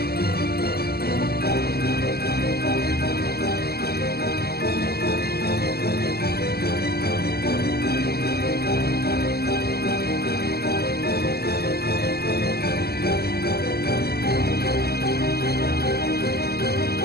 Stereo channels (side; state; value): right; late; 0.46 ms